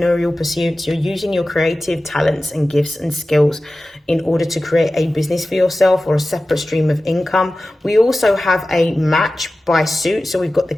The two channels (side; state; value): both; normal; correlation 0.96